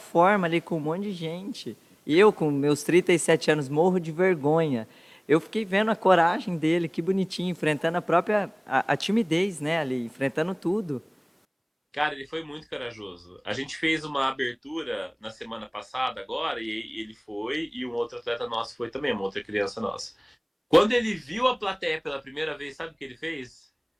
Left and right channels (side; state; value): both; identical; correlation 1.00